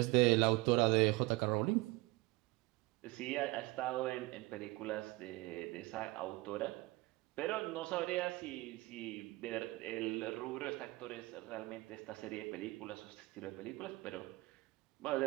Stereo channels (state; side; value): quieter; left; 21.3 dB